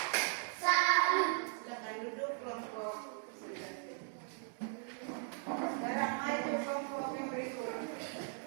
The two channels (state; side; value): silent; left; 52 dB below the other